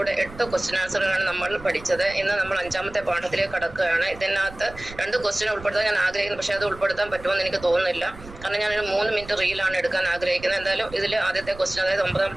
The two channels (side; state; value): right; noise; rumble, 17 dB below the sound